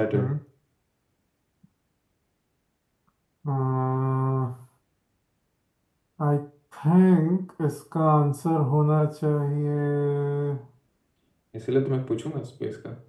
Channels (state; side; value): identical; both; correlation 1.00